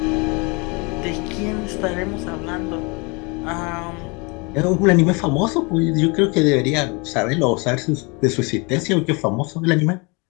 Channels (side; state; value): right; quieter; 29.5 dB